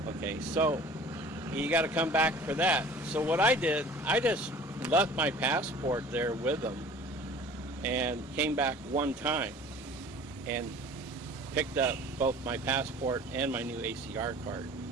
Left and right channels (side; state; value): both; normal; correlation 0.46